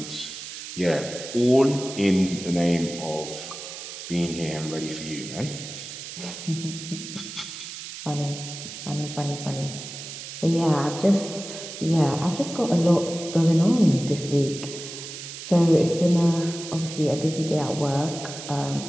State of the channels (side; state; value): right; noise; hiss, 10 dB below the sound